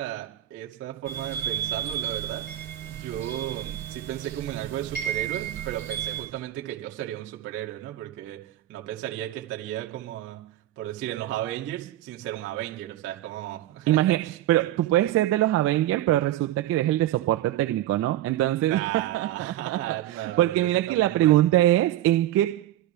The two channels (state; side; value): quieter; left; 13.9 dB